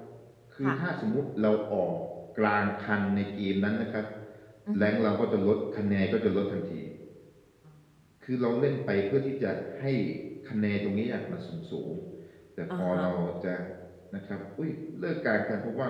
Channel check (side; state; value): both; identical; correlation 1.00